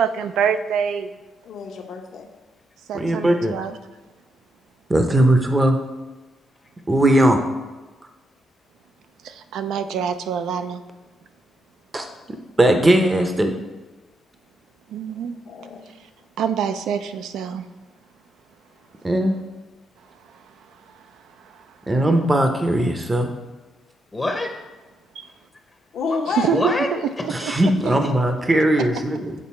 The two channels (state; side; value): normal; both; correlation 0.81